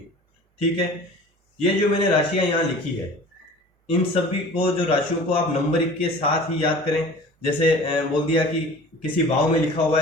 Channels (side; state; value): both; normal; correlation 0.42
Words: ठीक है। ये जो मैंने राशियां यहां लिखी है, इन सभी को, जो राशियों को आप नंबर के साथ ही याद करें। जैसे बोल दिया कि किसी भाव में लिखा हुआ